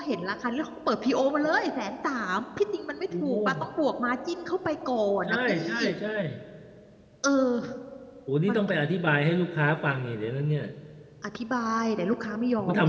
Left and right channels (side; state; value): both; identical; correlation 1.00